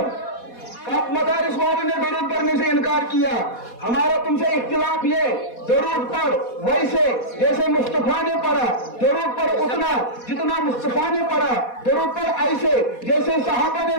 कब मदारिस वालों ने दुरूद पढ़ने से इनकार किया। हमारा तुमसे इख्तिलाफ ये दुरूद पढ़ वैसे जैसे मुस्तफा ने पढ़ा, दुरूद पढ़ उतना जितना मुस्तफा ने पढ़ा, दुरूद पढ़ ऐसे जैसे सहाबा ने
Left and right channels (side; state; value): right; late; 4.2 ms